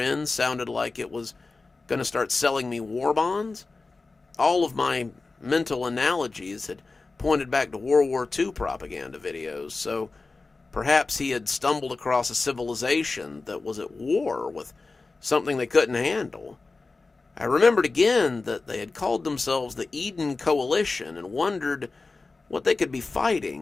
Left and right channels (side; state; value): right; quieter; 3.8 dB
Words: sounded like it was going to start selling me war bonds? All of my mental analogies had pointed back to World War II propaganda videos, so perhaps he had stumbled across a civilization that was at war with something they couldn't handle. I remembered again that they had called themselves the Eden Coalition and wondered what they could be